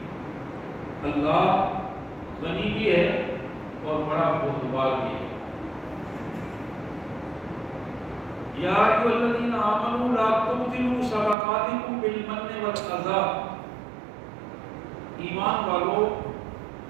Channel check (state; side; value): drops out; left; at 11.4 s